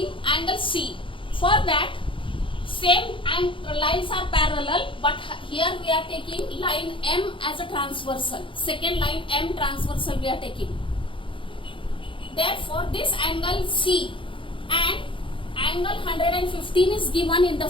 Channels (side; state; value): right; late; 0.25 ms